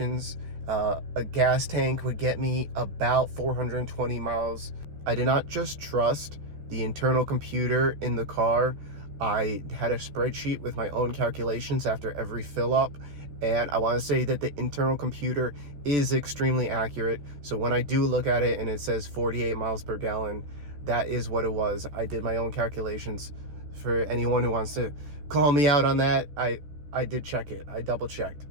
A gas tank would get me about 420 miles. I did not just trust the internal computer in the car. I had a spreadsheet with my own calculations after every fill up, and I want to say that the internal computer is extremely accurate. So when I do look at it and it says 48 miles per gallon, that is what it was. I did my own calculations. For anyone who wants to call me out on that, I did check it. I double checked.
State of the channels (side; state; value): left; late; 13 ms